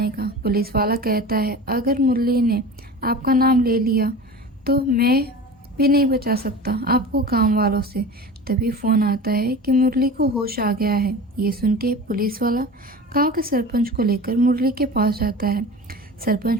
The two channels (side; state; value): both; normal; correlation 0.34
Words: का। पुलिस वाला कहता है अगर मुरली ने आपका नाम ले लिया तो मैं भी नहीं बचा सकता आपको गांव वालों से। तभी फ़ोन आता है कि मुरली को होश आ गया है। ये सुन के पुलिस वाला गांव के सरपंच को लेकर मुरली के पास जाता है। सरपंच